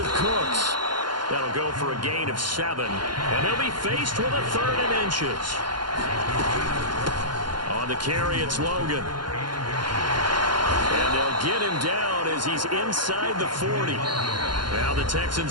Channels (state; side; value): late; left; 0.71 ms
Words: Cooks. That'll go for a gain of 7. And they'll be faced with a 3rd and inches. On the carry, it's Logan. And they'll get him down as he's inside the 40. Now the